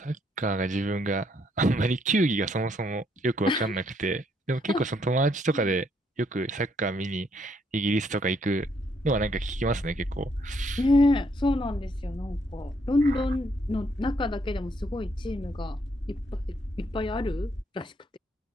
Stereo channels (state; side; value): normal; both; correlation 0.71